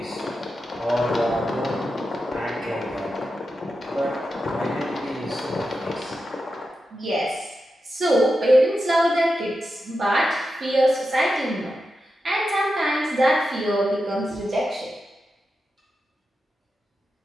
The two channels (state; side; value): normal; both; correlation 0.89